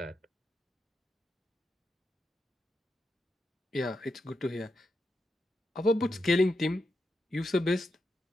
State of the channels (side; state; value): both; normal; correlation 0.86